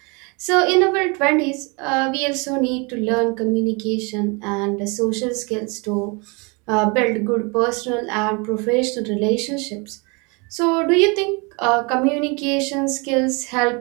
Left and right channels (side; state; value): left; quieter; 30.3 dB